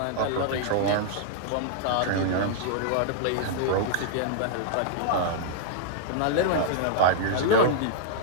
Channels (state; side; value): different; both; correlation -0.01